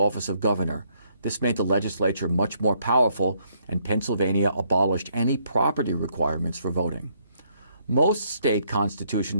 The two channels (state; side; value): inverted; both; correlation -0.71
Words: of governor. This made the legislature much more powerful, and Pennsylvania abolished any property requirements for voting. Most state